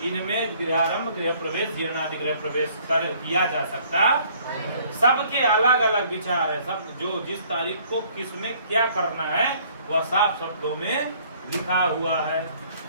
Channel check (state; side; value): inverted; both; correlation -0.59